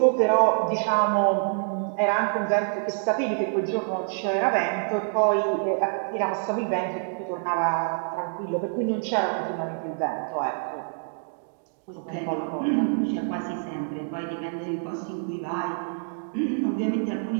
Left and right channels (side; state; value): left; silent; digital silence